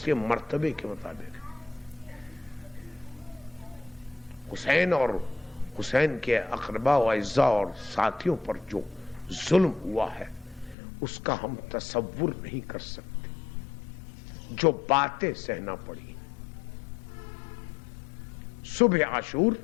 کے مرتبے کے مطابق ہے۔ حسین کے اقربا و اعزاء اور ساتھیوں پر جو ظلم ہوا ہے اس کا ہم تصور نہیں کر سکتے، جو باتیں سہنا پڑی۔ صبح عاشور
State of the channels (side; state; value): right; drops out; at 10.8 s